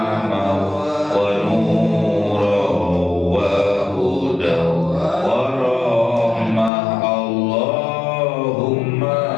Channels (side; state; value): right; drops out; at 6.7 s